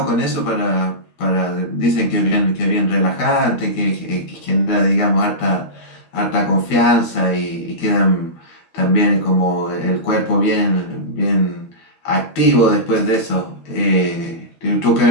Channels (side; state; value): right; late; 12 ms